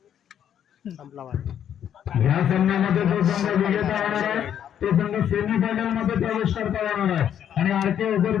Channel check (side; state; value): right; quieter; 9.5 dB